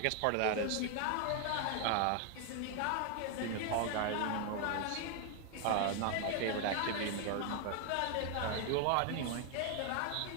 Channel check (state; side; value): different; both; correlation 0.01